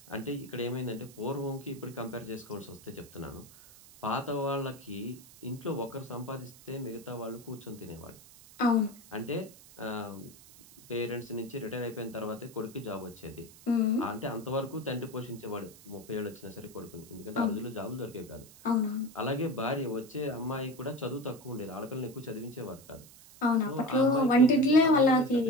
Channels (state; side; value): noise; right; hiss, 21 dB below the sound